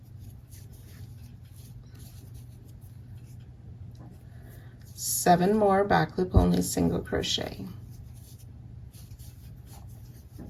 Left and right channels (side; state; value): both; identical; correlation 1.00